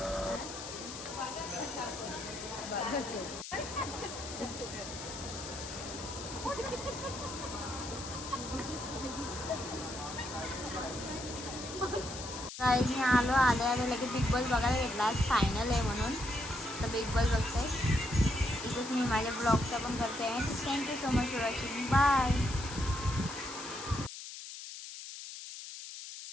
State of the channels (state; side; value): noise; left; hiss, 10 dB below the sound